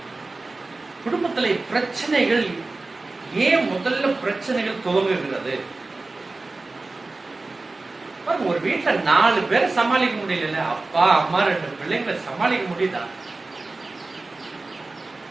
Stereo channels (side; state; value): left; quieter; 3.4 dB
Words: குடும்பத்துல பிரச்சனைகள் ஏன் முதல்ல பிரச்சனைகள் துவங்குகிறது? ஒரு வீட்டுல 4 பேரை சமாளிக்க முடியல, அப்பா அம்மா 2 பிள்ளைங்களை சமாளிக்க முடியுதா?